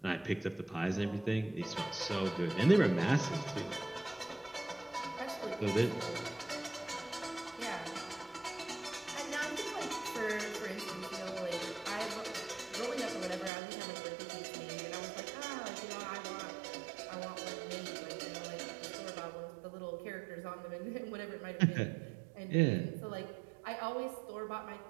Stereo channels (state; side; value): drops out; left; at 13.5 s